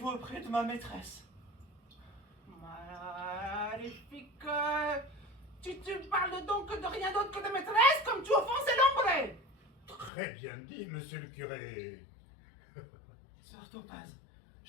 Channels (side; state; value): right; drops out; at 10.1 s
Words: auprès de ma maîtresse. Magnifique. Tu parles donc de rien d'autre que de maîtresse, comme tu offenses l'ombre. Très bien dit, monsieur le curé. Sœur Topaz,